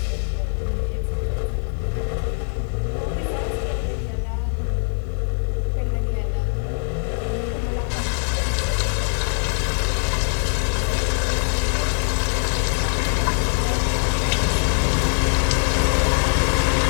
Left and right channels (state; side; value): silent; right; 62 dB below the other